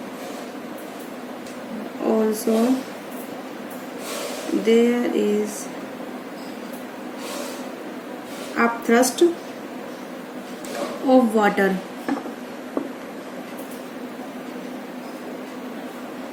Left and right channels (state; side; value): identical; both; correlation 1.00